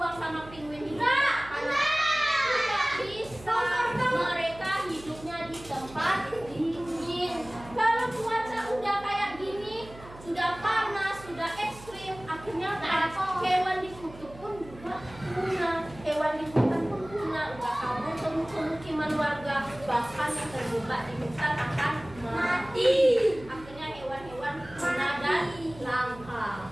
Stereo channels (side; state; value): right; noise; hum, 18 dB below the sound